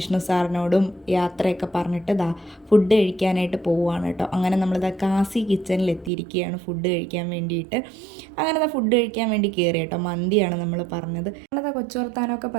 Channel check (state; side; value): drops out; left; at 6.1 s